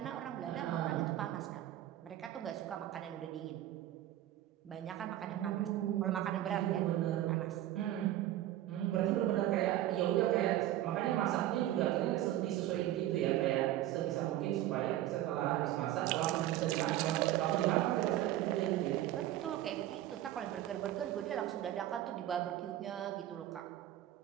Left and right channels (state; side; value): quieter; left; 13.6 dB